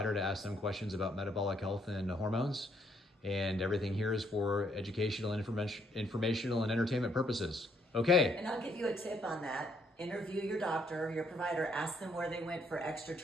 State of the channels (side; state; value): both; normal; correlation 0.70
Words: to ask them questions about metabolic health and hormones. And everything here is for educational and informational and entertainment purposes. Okay. And I'll give you a tip on that. Interview your doctor, your provider, ask them where they went for extra